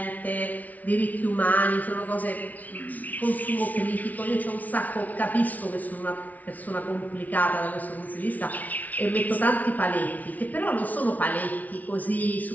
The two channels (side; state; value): right; late; 0.074 ms